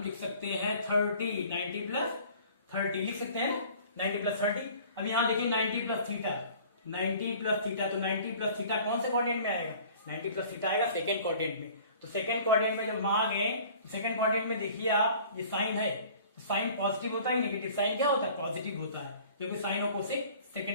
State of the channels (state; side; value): inverted; both; correlation -0.49